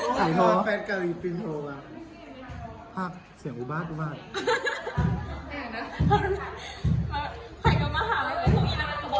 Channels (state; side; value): identical; both; correlation 1.00